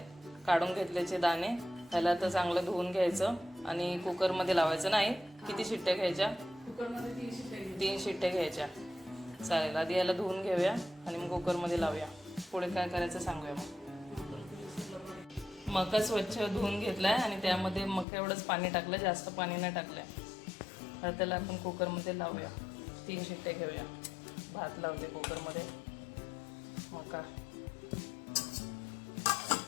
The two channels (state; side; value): drops out; right; at 18.1 s